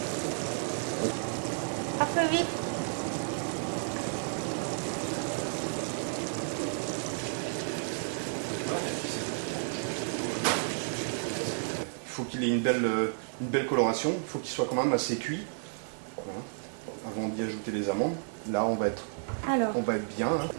Après, oui. Il faut qu'il ait une belle coloration, il faut qu'il soit quand même assez cuit, voilà, avant d'y ajouter les amandes. Là, on va être bien. Hein.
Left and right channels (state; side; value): silent; left; 57 dB below the other